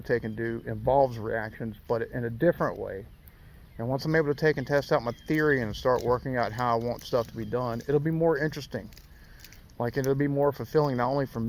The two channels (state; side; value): identical; both; correlation 1.00